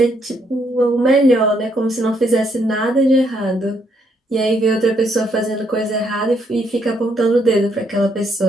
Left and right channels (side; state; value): both; normal; correlation 0.73